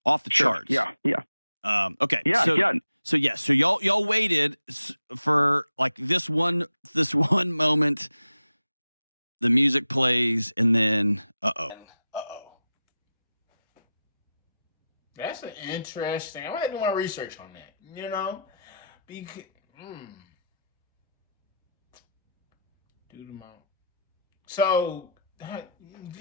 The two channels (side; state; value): both; inverted; correlation -0.86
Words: Off the charts. Yeah. Okay. Yeah. So y'all waited for like this one moment. The music plays, and then That's an interesting. I'm gonna do my research on that. Because do the mount. So